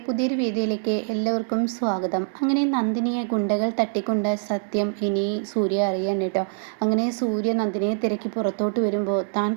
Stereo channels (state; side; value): silent; left; digital silence